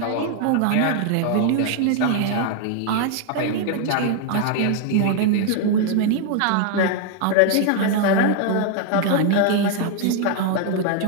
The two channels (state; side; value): different; both; correlation 0.00